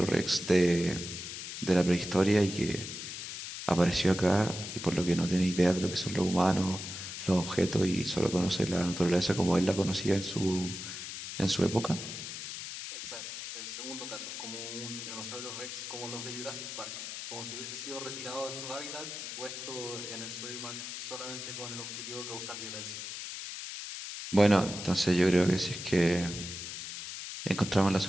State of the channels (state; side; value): noise; left; hiss, 8 dB below the sound